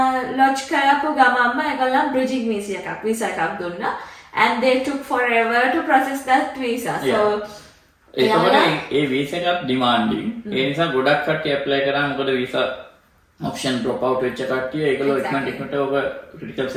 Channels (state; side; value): identical; both; correlation 1.00